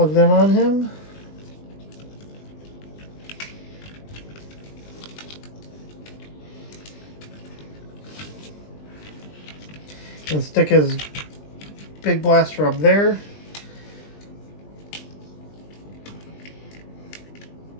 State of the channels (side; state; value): right; late; 20 ms